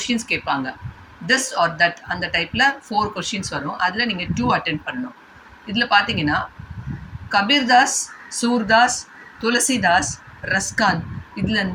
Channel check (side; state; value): both; identical; correlation 1.00